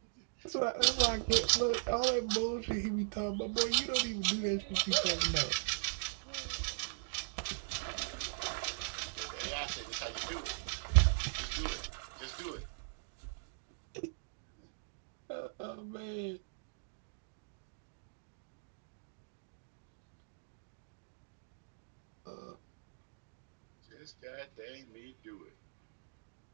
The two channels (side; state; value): left; silent; digital silence